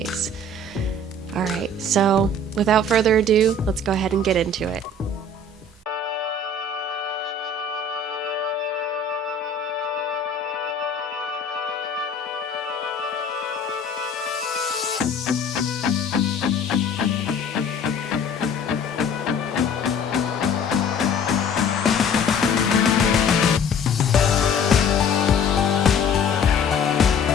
Alright, so without further ado, let's go ahead and get into it.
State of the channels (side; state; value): right; quieter; 3.0 dB